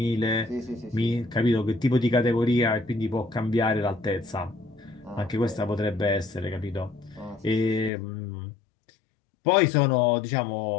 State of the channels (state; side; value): drops out; right; at 7.9 s